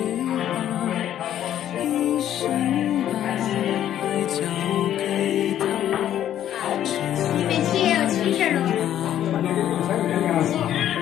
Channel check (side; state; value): right; quieter; 11.2 dB